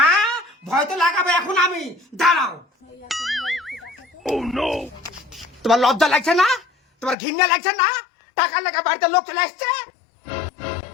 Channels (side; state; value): right; drops out; at 7.2 s